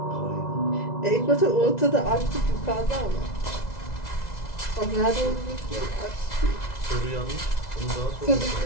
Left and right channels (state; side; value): late; right; 2.0 ms